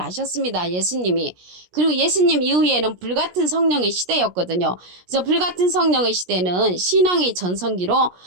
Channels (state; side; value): late; left; 17 ms